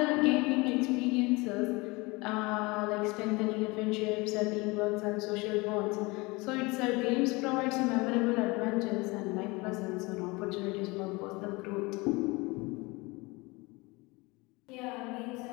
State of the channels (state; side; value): quieter; right; 24.6 dB